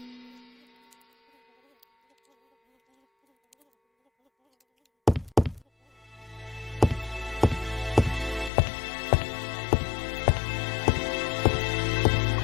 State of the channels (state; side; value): drops out; right; at 8.5 s